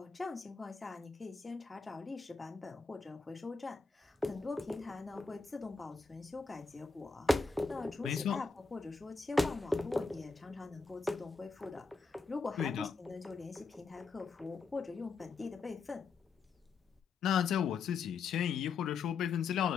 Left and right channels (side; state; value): right; quieter; 4.6 dB